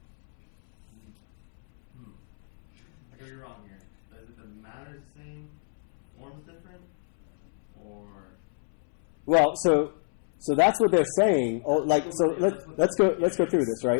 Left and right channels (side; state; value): right; silent; 59 dB below the other